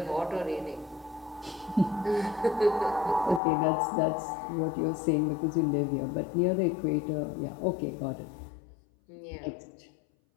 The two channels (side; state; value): right; drops out; at 3.4 s